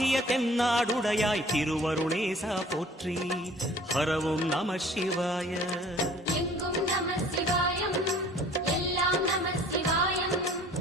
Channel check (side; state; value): both; normal; correlation 0.51